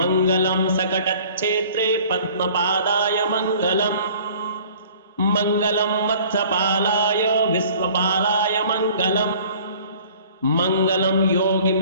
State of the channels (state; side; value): inverted; both; correlation -0.51